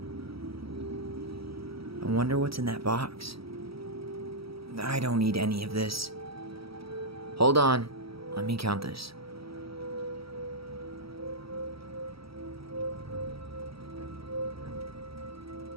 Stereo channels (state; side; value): late; left; 0.76 ms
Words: wonder what's in that box. I don't need any of this. Hold on. Let me count this.